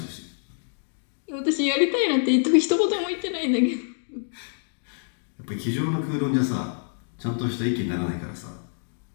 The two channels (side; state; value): right; silent; digital silence